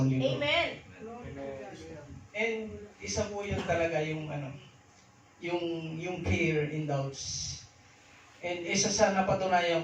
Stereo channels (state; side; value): identical; both; correlation 1.00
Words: libro. Amen. And isa po yun talaga yung fear and doubts. And isa sa napatunayan